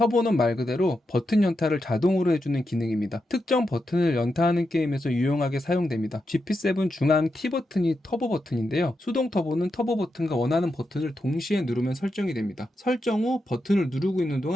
말 그대로 버튼 연타를 자동으로 해주는 기능입니다. 특정 버튼을 연타하는 게임에서 유용하게 사용됩니다. GP7 중앙 T 버튼이 터보 버튼인데요. 수동 터보는 터보 버튼과 원하는 버튼을 동시에 누르면 설정이 됩니다. 설정 후 버튼을 누르고 있는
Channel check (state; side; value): normal; both; correlation 0.86